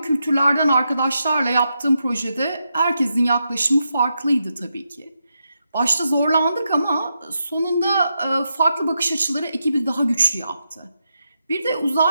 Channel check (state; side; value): inverted; both; correlation -0.85